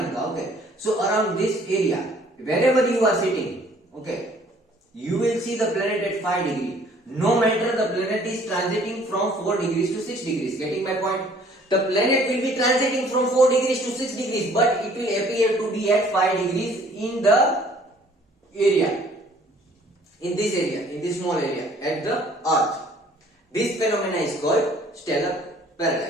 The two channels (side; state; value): both; normal; correlation 0.57